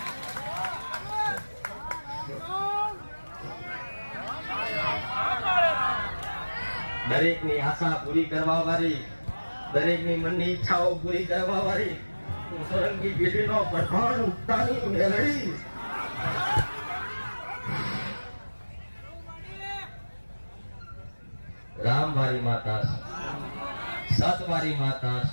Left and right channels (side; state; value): both; inverted; correlation -1.00